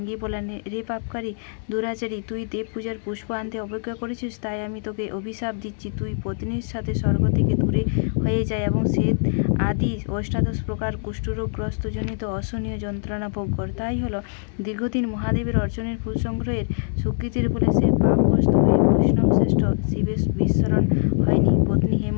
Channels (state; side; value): silent; right; digital silence